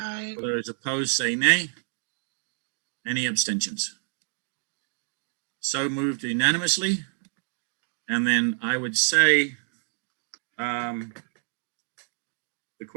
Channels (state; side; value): silent; left; 59 dB below the other